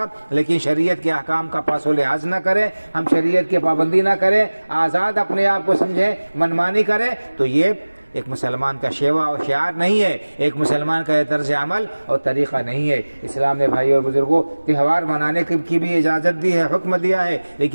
لیکن شریعت کے احکام کا پاس و لحاظ نہ کریں، ہم شریعت کی پابندی نہ کریں، آزاد اپنے آپ کو سمجھیں، منمانی کریں، تو یہ ایک مسلمان کا شیوا اور شعار نہیں ہے، ایک مسلمان کا یہ طرز عمل اور طریقہ نہیں ہے۔ اسلام نے بھائی اور بزرگوں تہوار منانے کی بھی اجازت دی ہے، حکم دیا ہے،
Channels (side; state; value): both; inverted; correlation -1.00